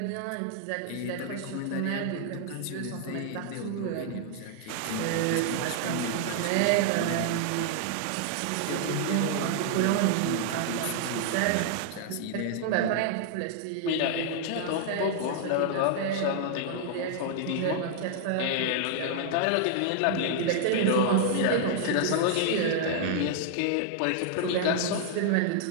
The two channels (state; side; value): different; both; correlation -0.01